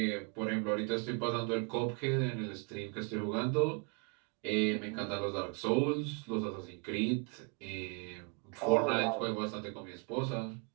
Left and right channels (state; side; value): quieter; left; 36.0 dB